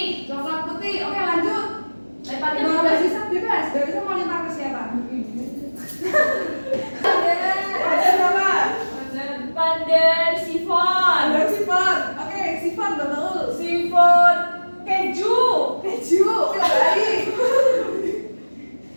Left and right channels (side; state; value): both; inverted; correlation -1.00